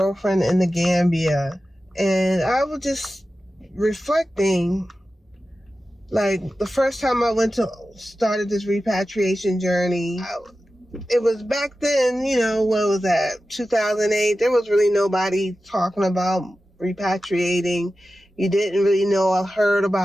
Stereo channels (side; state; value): both; normal; correlation 0.94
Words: in the Gambia, and I was just reflecting. Like, the first time I started this repatriation journey, it was back then, what was that, 2008? There was really nobody talking about repatriating. You didn't really know. I heard